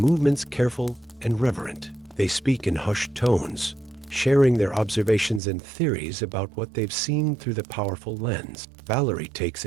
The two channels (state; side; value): drops out; left; at 5.4 s